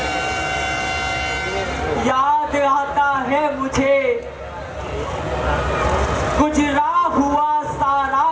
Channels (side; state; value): both; identical; correlation 1.00